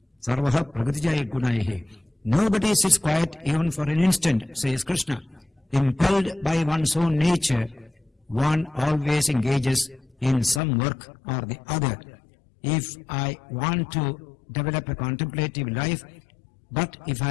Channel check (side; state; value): right; drops out; at 10.6 s